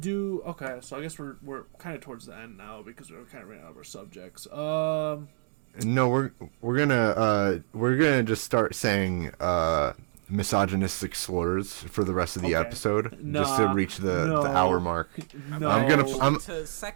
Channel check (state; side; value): silent; left; digital silence